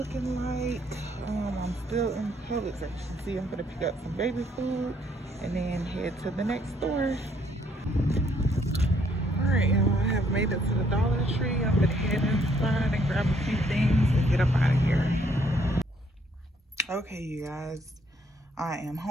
like. I'm still in Publix. As you can see, I'm gonna pick up some baby food and then head to the next store. Alright, y'all, I have made it to the Dollar Tree. I'm gonna head inside and grab a few things and get up out of here. Okay, you guys, I am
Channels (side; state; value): both; normal; correlation 0.67